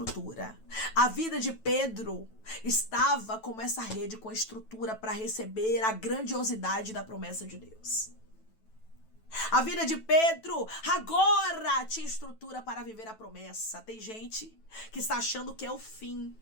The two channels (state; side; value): late; right; 9.1 ms